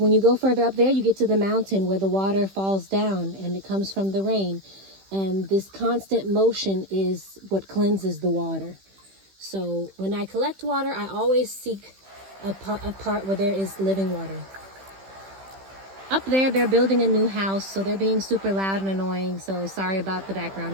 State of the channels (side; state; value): left; late; 15 ms